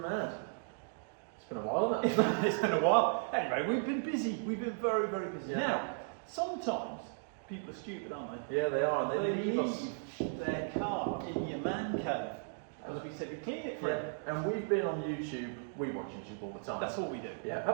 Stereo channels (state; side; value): silent; left; digital silence